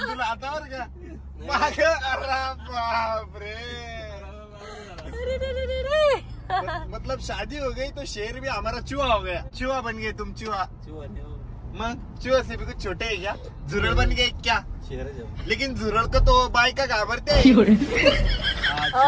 तुला हातावर का माग. अरे बापरे, मतलब शादी हो गई तो शेर भी हमारा चूहा हो गया. चूहा बन गए तुम, चूहा. मग चूहा से भी कुछ छोटे है क्या? झुरळ बन गए क्या? लेकिन झुरळ को तो बायका घाबरते.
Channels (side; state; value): both; identical; correlation 1.00